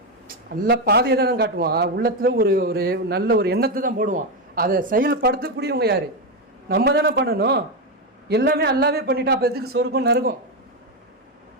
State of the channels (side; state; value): both; normal; correlation 0.08